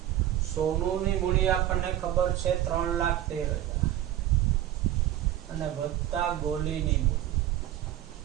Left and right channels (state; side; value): quieter; left; 12.9 dB